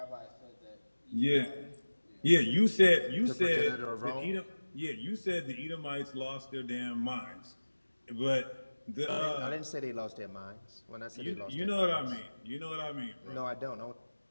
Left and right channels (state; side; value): inverted; both; correlation -1.00